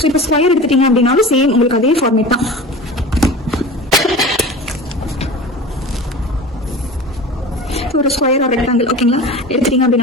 இப்போ ஸ்கொயர் எடுத்துட்டீங்க அப்படின்னாலும் சேம் உங்களுக்கு அதே ஃபார்மேட் தான். ஒரு ஸ்கொயர் ஆர் ரெக்டாங்கிள் ஓகேங்களா எடுத்துட்டீங்க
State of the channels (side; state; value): both; normal; correlation 0.34